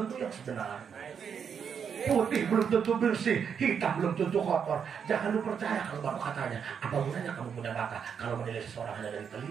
yang sebenarnya. Putih belum tentu bersih, hitam belum tentu kotor. Jangan lu percaya kalau baru katanya. Apa gunanya kamu punya mata kalau menilai seseorang hanya dari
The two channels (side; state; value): left; quieter; 7.2 dB